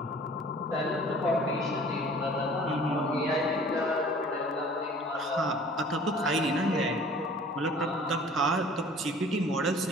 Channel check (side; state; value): both; normal; correlation 0.49